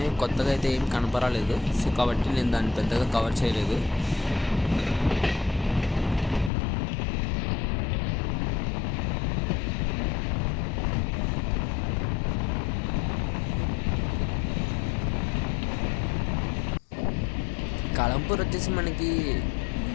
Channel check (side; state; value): right; drops out; at 6.5 s